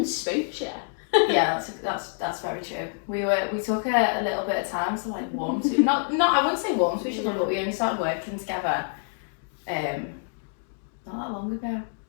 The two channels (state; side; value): silent; right; digital silence